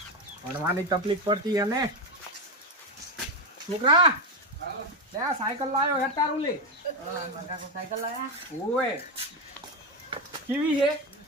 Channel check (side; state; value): both; normal; correlation 0.10